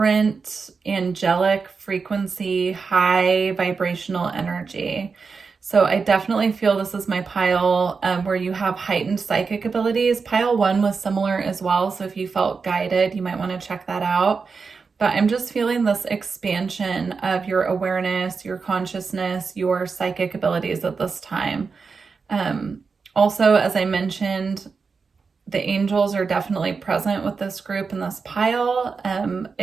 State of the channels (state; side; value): quieter; left; 5.0 dB